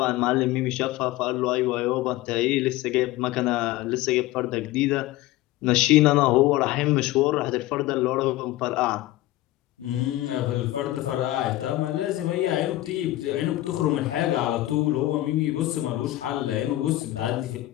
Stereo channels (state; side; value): quieter; right; 16.5 dB